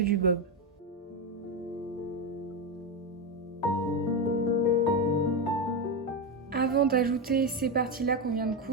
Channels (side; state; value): both; normal; correlation 0.11